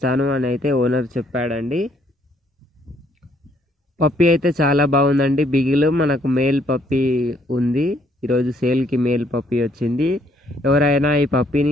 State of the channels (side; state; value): both; normal; correlation 0.67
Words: అని అయితే ఓనర్ చెప్పాడండి. పప్పీ అయితే చాలా బాగుందండి. బిగిల్ మనకు మేల్ పప్పీ ఉంది. ఈరోజు సేల్కి మేల్ పప్పీ వచ్చింది. ఎవరైనా ఈ పప్పీని